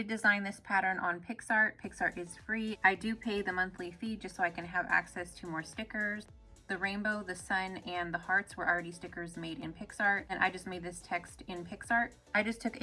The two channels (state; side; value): identical; both; correlation 1.00